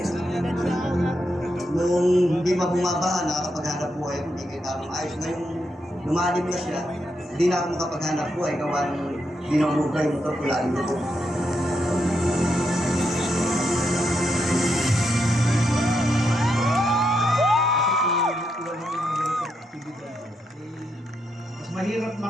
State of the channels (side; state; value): both; normal; correlation 0.82